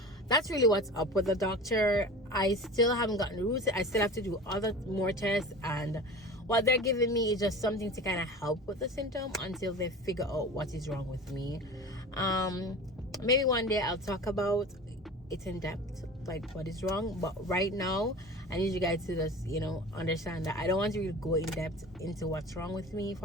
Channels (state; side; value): normal; both; correlation 0.35